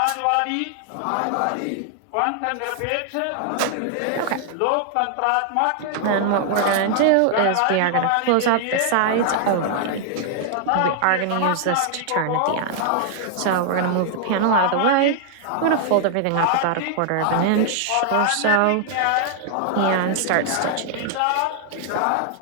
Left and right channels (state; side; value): different; both; correlation 0.00